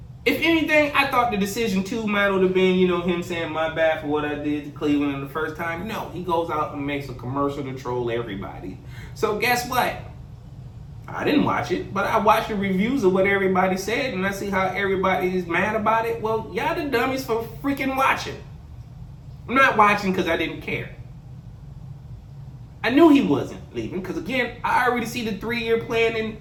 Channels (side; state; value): both; identical; correlation 1.00